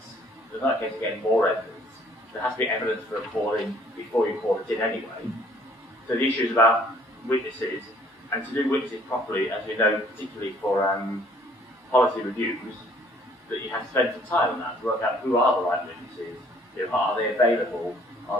There's not a case of getting more evidence. There has to be evidence for a call-in before you call it in anyway. So the issue is about witnesses, and to do witnesses properly, as we know, particularly for policy reviews, that you have to spend some time on that to work out who are the right witnesses, are they available,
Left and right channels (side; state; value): both; normal; correlation 0.59